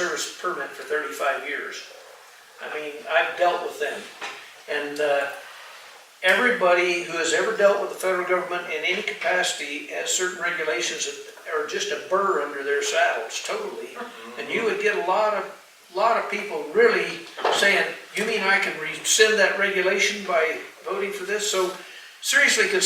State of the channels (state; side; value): identical; both; correlation 1.00